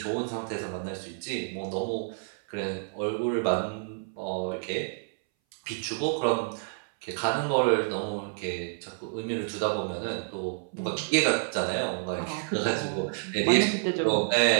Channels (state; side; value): silent; left; 59 dB below the other